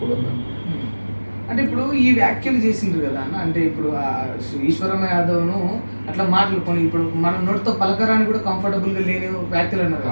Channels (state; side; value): inverted; both; correlation -1.00